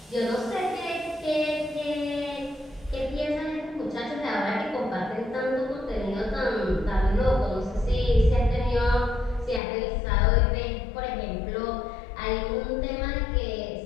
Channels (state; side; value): drops out; right; at 9.6 s